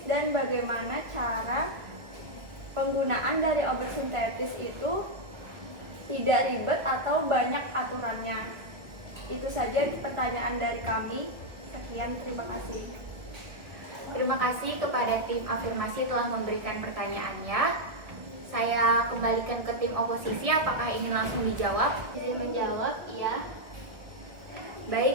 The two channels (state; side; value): late; left; 1.9 ms